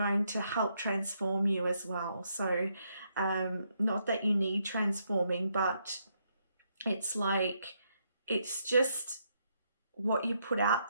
to help transform you as well. So not that you need transforming, but it's like, it's just what you put out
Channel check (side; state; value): both; inverted; correlation -0.76